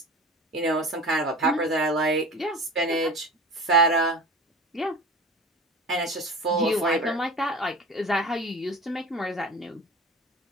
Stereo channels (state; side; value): normal; both; correlation 0.36